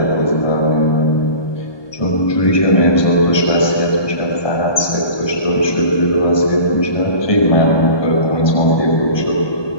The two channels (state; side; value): late; right; 1.2 ms